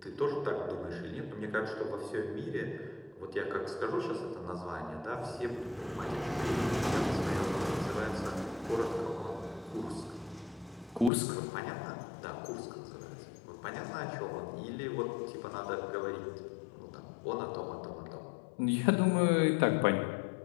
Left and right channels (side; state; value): right; drops out; at 11.1 s